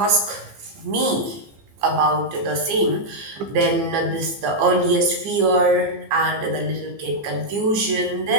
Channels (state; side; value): late; left; 15 ms